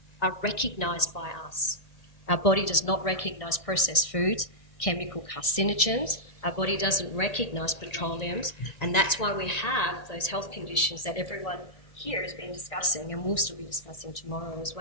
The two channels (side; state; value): right; late; 1.9 ms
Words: are recognised by us. Our body does not recognise processed foods, chemical carcinogens. Our body doesn't recognise petroleums, and that's why we have those health conditions that everyone here has been discussing and will still be discussing tomorrow as